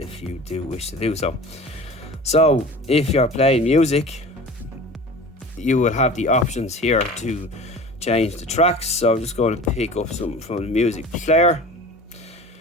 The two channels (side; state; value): both; normal; correlation 0.38